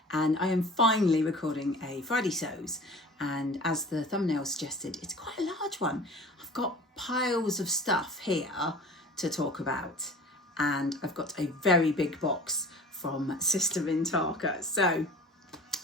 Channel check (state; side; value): normal; both; correlation 0.41